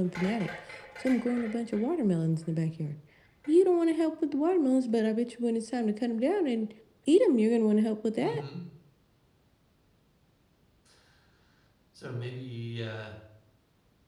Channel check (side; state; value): both; identical; correlation 1.00